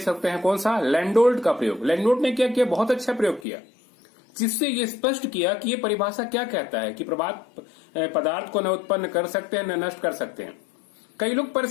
हैं कौन सा, लैंडोल्ट का प्रयोग। लैंडोल्ट ने क्या किया, बहुत अच्छा प्रयोग किया, जिससे ये स्पष्ट किया कि ये परिभाषा क्या कहता है कि पदार्थ को न उत्पन्न कर सकते हैं न नष्ट कर सकते हैं। कई लोग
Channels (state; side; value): drops out; right; at 3.5 s